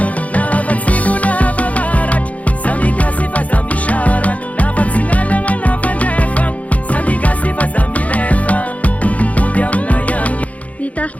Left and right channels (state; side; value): late; right; 0.068 ms